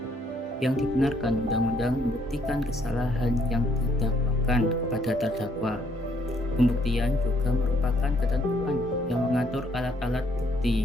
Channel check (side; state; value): both; normal; correlation 0.68